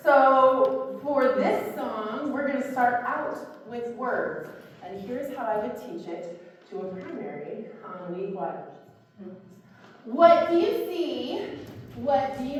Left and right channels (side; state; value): both; identical; correlation 1.00